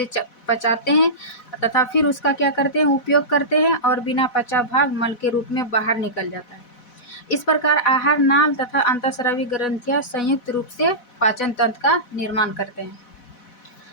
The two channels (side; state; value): right; late; 4.1 ms